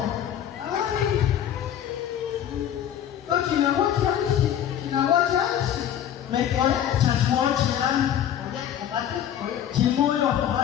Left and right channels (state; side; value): quieter; right; 10.2 dB